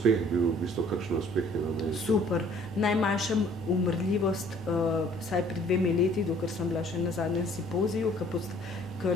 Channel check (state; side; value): normal; both; correlation 0.57